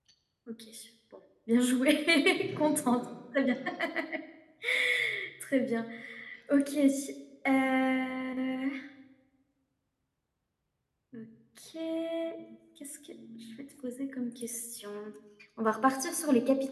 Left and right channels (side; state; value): both; identical; correlation 1.00